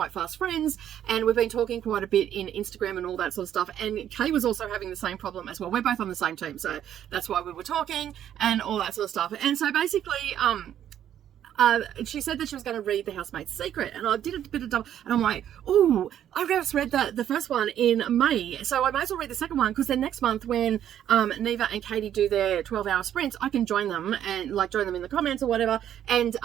fast friends, and we've been talking quite a bit in Instagram and all that sort of stuff. And Kay was also having the same problem as well. We're both on the same team, so that's why we were talking and all that sort of stuff. And so basically she said that she was going to read The Housemaid's Secret, and I did a bit of double, and I'm like, oh, I just read the first one in May, so I might as well read the second one, because then next month when Neva and Katie do their 12-hour sprints, I can join them and join them in the comments or whatever, and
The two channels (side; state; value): left; quieter; 10.5 dB